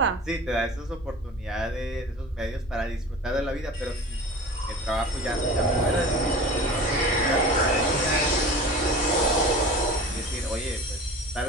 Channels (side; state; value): both; normal; correlation 0.37